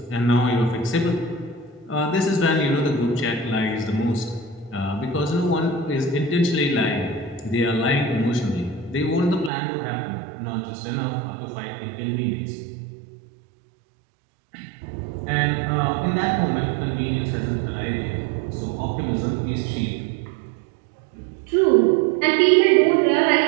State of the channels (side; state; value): left; drops out; at 9.5 s